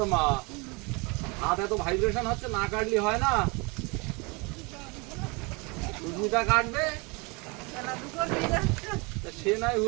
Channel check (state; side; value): quieter; left; 28.7 dB